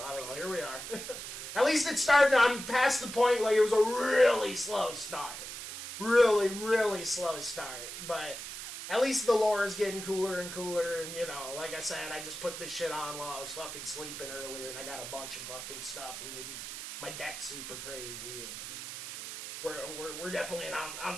I don't know, here we are. At least it started, I'm past the point, like, it was a really slow start. Really, really slow start, but at least the lore is getting cooler and cooler, and, you know, like I said, I just put this shit on while I was fucking sleeping earlier, and I got a bunch of fucking stuff, and my deck's super crazy, and we're definitely on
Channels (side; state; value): right; noise; hiss, 8 dB below the sound